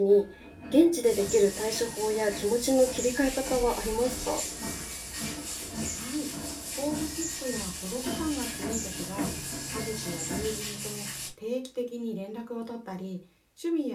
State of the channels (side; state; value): both; identical; correlation 1.00